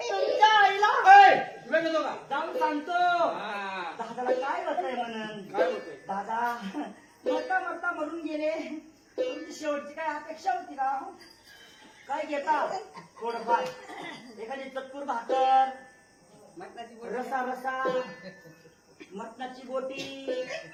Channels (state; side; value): identical; both; correlation 1.00